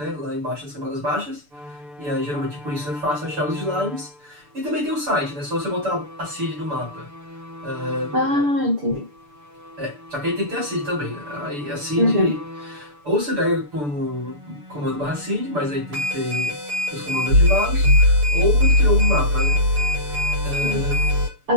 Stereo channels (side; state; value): left; late; 6.9 ms